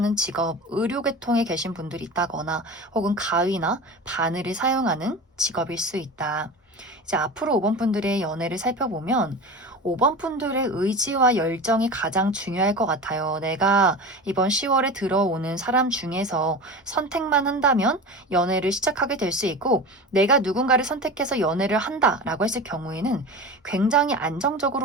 직업, 의료계통에 계신 분들이 있다거나, 혹은 가위나 바늘을 사용하는 직업일 수 있다. 이제 앞으로 5번 분들의 연애를 살펴보면 5번 분들의 의지와 열정이 가장 중요할 것 같아요. 내가 이번 10월에 들어오는 사람 중에서 선택만 한다면 연애를 시작하게 될 수 있고, 내가 누군가를 선택해서 연애를 한다라고 했을 경우에는 굉장히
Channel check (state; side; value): normal; both; correlation 0.30